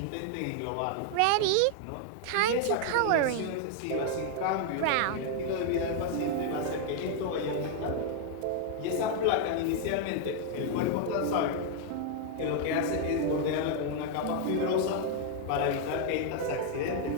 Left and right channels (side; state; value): both; different; correlation 0.00